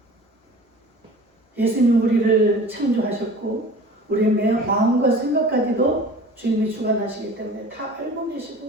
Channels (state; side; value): normal; both; correlation 0.42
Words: 예수님 우리를 창조하셨고 우리의 매 마음과 생각까지도 주님이 주관하시기 때문에 다 알고